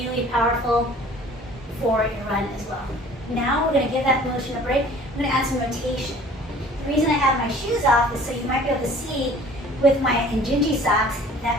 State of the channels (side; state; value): both; normal; correlation 0.49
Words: powerful for your run as well. Now we're going to give that motion a break. I'm going to add some rotation. The reason I have my shoes off is so you might be able to see with my Injinji socks that